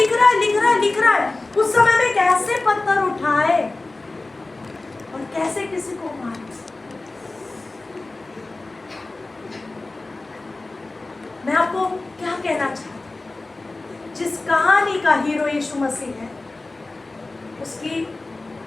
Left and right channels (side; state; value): right; quieter; 3.2 dB